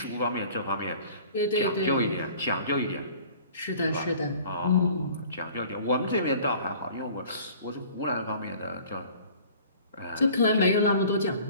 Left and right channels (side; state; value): both; inverted; correlation -0.48